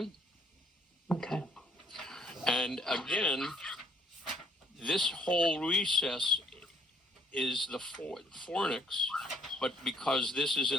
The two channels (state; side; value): normal; both; correlation 0.63